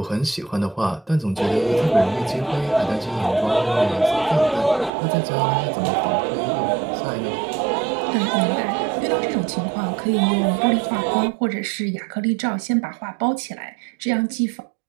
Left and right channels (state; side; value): drops out; left; at 4.9 s